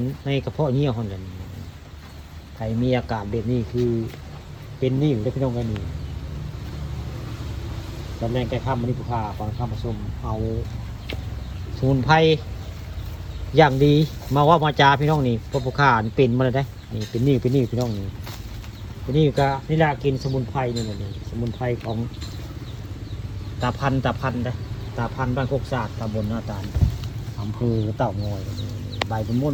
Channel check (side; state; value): both; identical; correlation 1.00